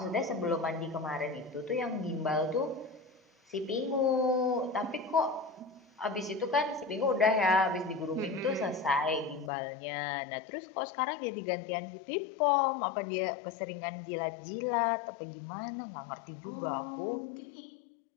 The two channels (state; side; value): drops out; right; at 9.5 s